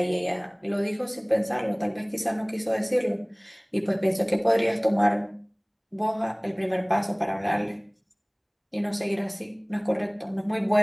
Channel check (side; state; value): both; identical; correlation 1.00